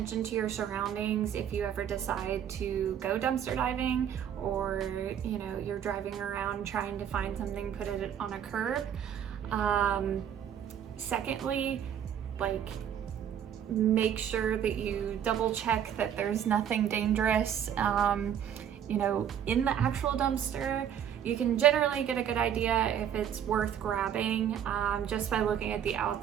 to your surroundings if you ever decide to go dumpster diving, or you know, you're driving around trying to find something, put it on a curb. Secondly, like, make sure that you double check that there's nothing dangerous, you know, in the actual dumpster. You can generally get a good idea if it's worth grabbing just by looking at the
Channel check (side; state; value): left; quieter; 9.3 dB